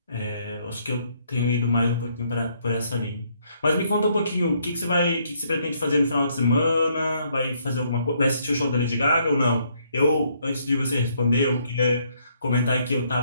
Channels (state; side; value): inverted; both; correlation -0.70